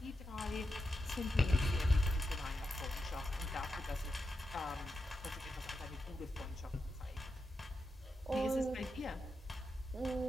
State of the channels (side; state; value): both; normal; correlation 0.87